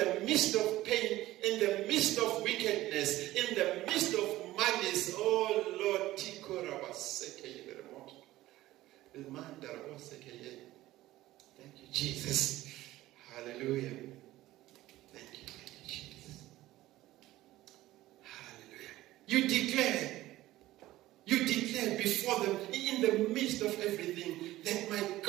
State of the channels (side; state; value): left; quieter; 16.2 dB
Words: midst of pain, in the midst of wickedness, in the midst of malice, oh Lord, thank you, Jesus. Hallelujah. Thank you, Jesus. Hallelujah. You declare before them, in the midst of everything, that my